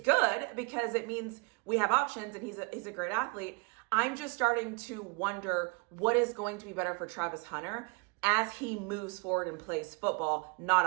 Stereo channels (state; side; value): quieter; left; 31.2 dB